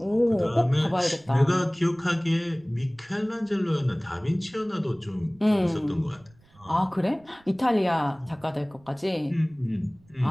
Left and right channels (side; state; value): right; noise; rumble, 29 dB below the sound